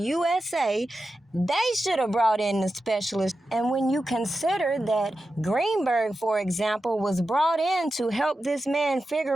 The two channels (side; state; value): both; normal; correlation 0.91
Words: they should have brought in the specialists. And when you consider that Greenberg, for example, was brought in to help this man